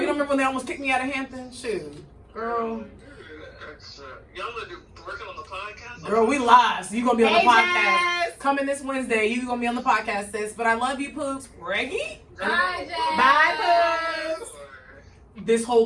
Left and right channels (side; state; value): both; identical; correlation 1.00